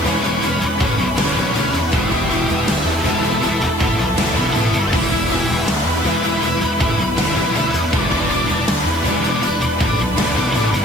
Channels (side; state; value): right; noise; hiss, 19 dB below the sound